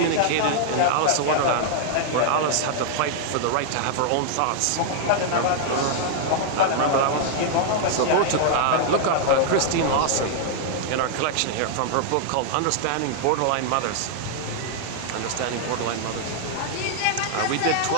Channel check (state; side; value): different; both; correlation -0.01